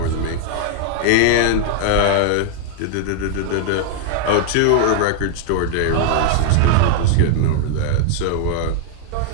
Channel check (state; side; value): different; both; correlation -0.01